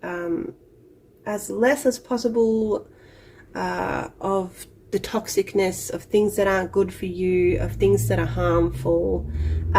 as less as possible of the toxicness, of things that aren't good for you, of things that are harmful,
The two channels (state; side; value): identical; both; correlation 1.00